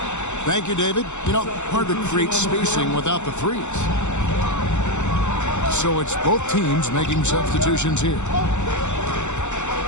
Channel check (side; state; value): right; late; 0.83 ms